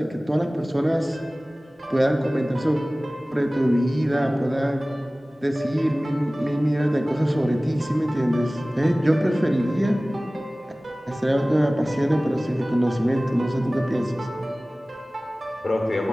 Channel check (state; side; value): normal; both; correlation 0.98